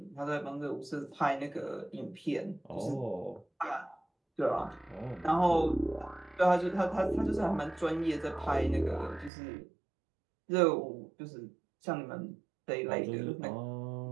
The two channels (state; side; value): drops out; left; at 9.3 s